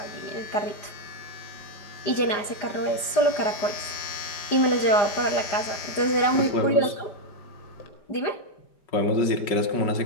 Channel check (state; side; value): late; right; 4.9 ms